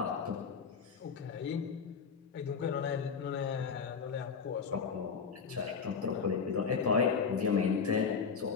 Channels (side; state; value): right; quieter; 5.9 dB